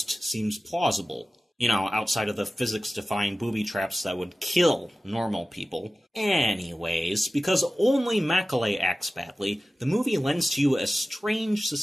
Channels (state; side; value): normal; both; correlation 0.95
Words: seems plausible. Outside of the physics-defying booby traps that would kill normal people. Anyways, because only Macaulay acts badly, the movie lends to you a strange